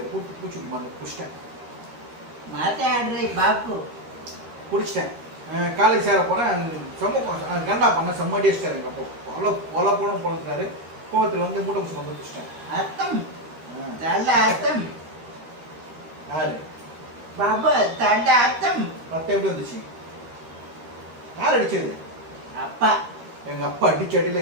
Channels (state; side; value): late; left; 13 ms